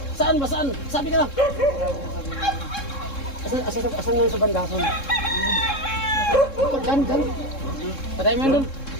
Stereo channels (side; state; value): right; late; 3.7 ms